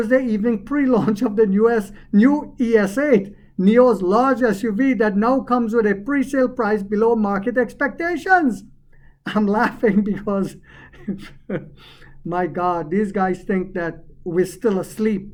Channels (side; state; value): both; identical; correlation 1.00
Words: evening pre-launch of the new ES8, NIO's large SUV that now comes with a pre-sale price below market expectations. I'm laughing because, my God, these guys think that we're still asleep.